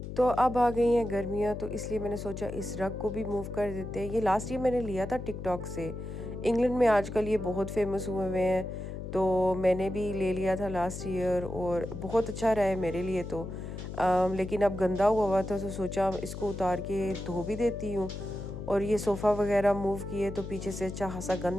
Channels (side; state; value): left; noise; hum, 8 dB below the sound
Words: तो अब आ गई हैं गर्मियाँ, तो इसलिए मैंने सोचा इस रग को भी मूव कर देते हैं। ये लास्ट ईयर मैंने लिया था टिकटॉक से। इंग्लैंड में आजकल ये बहुत फेमस हुए हुए हैं, तो मैंने भी ले लिया था लास्ट ईयर और बहुत अच्छा रहा है मेरे लिए तो। लेकिन अब गंदा हुआ था तो सोचा इसको उतार के धो भी देती हूँ। और ये सोफ़ा वगैरह मूव किए तो पीछे से अच्छा खासा